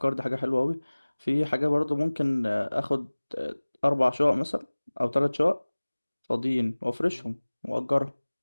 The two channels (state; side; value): inverted; both; correlation -1.00